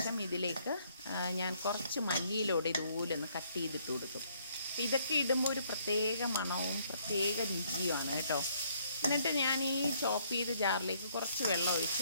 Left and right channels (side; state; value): both; inverted; correlation -0.67